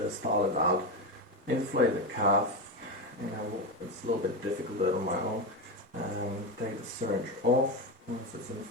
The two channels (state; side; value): normal; both; correlation 0.14